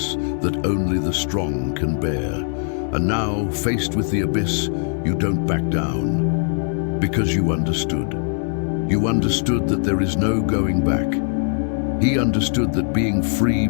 that only the strong can bear. And now, faced with the abyss, you don't back down, because you understood. You understood that there is no going back. He understood that being free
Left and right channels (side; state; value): right; silent; digital silence